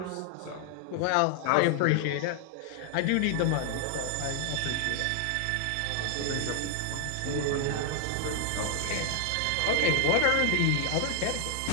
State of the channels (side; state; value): both; different; correlation 0.00